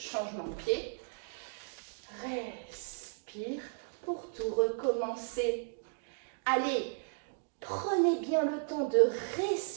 de pied. Respire pour tout recommencer. Allez, prenez bien le temps de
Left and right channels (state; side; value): silent; left; digital silence